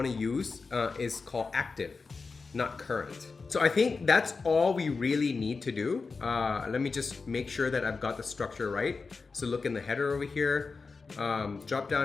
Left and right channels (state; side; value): quieter; right; 4.4 dB